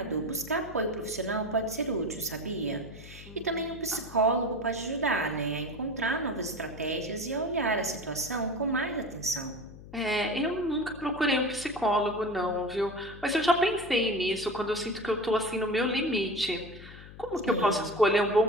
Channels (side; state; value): left; noise; hum, 16 dB below the sound